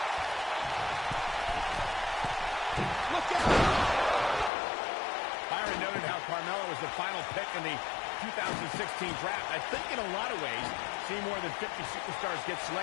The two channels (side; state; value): right; drops out; at 4.5 s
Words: Look out! Byron noted how Carmella was the final pick in the 2016 draft. I think in a lot of ways, seeing more than 50 superstars get